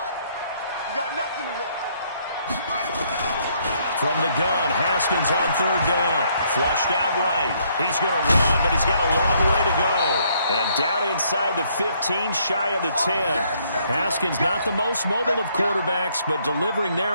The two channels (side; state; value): both; inverted; correlation -0.69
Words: got nothing left. From the gun, Haskins on 3rd down. Flushed out right. He's going to run, but he's got a long way to go. And down inside the 15, shy of the 10. Haskins not the most mobile of quarterbacks, but delivering